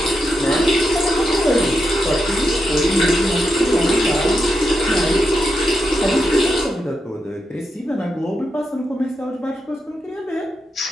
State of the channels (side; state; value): both; normal; correlation 0.85